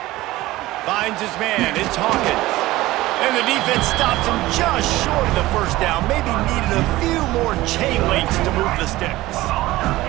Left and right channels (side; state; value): left; quieter; 17.7 dB